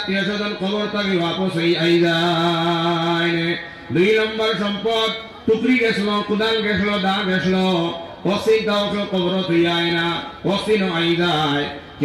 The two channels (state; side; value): identical; both; correlation 1.00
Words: স্বজন কবর থেকে वापस আই যায় দুই নম্বর সম্পদ টুকরি গেছিল কুদাল গেছিল দা গেছিল ওসি দাও কবর তুই আয় না ওসি ন আই যায়